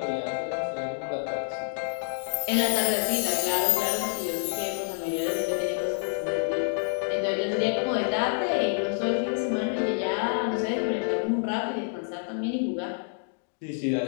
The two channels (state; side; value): silent; right; digital silence